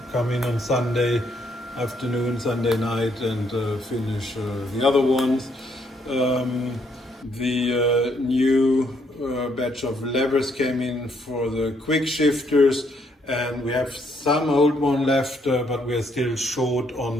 come in on Sunday afternoon, Sunday night, and finish the other ones. The new batch of levers came in for the quick shifters, and we have some old one left, but we're still short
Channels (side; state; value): both; normal; correlation 0.71